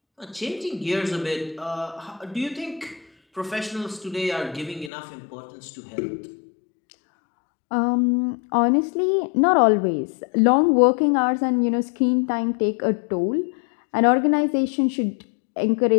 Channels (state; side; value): drops out; right; at 4.9 s